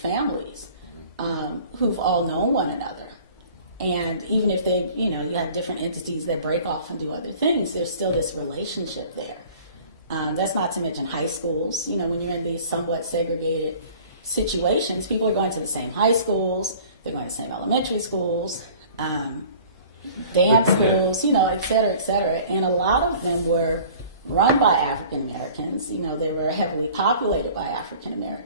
who've all known one another. And even if they, you have different entities that break off and do other things, there's still this relationship there. That's not to mention high schools. When you're in these somewhat segregated situations, people are going to the same high schools, they're going to the same elementary schools, dance schools, et cetera, et cetera. And a lot of them were run by African Americans. They were heavily populated by African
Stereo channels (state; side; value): inverted; both; correlation -0.47